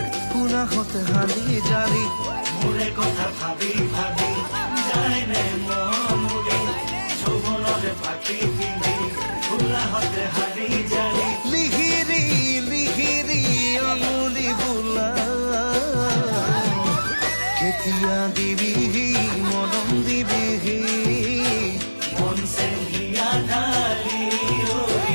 পুনাহতে হালি জালি মোৰে কথা ভাবি ভাবি যায় নে মৰুৰি যৌৱনৰ পাখি পিন্ধি পুনাহতে হালি জালি লিহিৰি লিহিৰি আঙুলি বোলা কেতিয়া দিবিহি মৰম দিবিহি মন চেং হিয়া ঢালি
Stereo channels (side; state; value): both; inverted; correlation -1.00